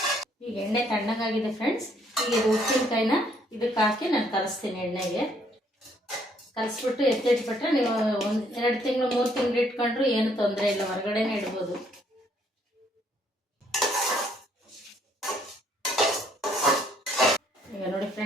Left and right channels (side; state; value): both; normal; correlation 0.67